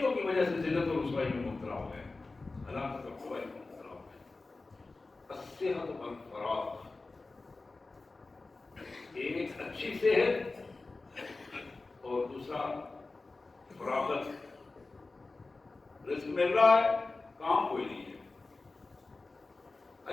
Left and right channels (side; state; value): right; quieter; 3.5 dB